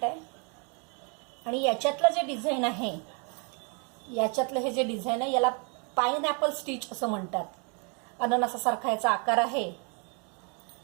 आहे आणि याच्यातलं जे डिझाईन आहे, याच्यातलं हे जे डिझाईन आहे याला पाइनएपल स्टिच असं म्हणतात. अननसासारखा याचा आकार आहे.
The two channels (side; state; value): left; quieter; 35.8 dB